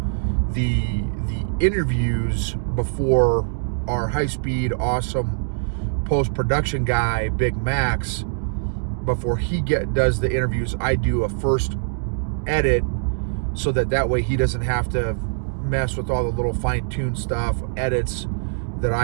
the interviews before our high-speed, awesome post-production guy, Big Max, before he does the interviews, I do a first edit so that way he doesn't have to mess with all the little fine-tuned stuff, edits that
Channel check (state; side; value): silent; left; digital silence